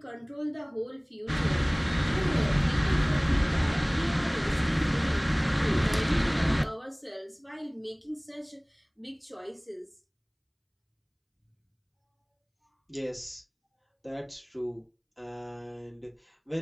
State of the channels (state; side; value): identical; both; correlation 1.00